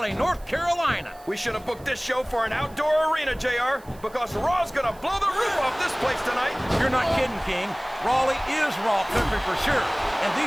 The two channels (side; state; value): right; noise; hiss, 25 dB below the sound